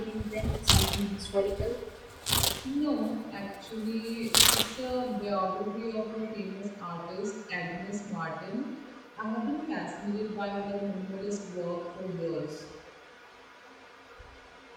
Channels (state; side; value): identical; both; correlation 1.00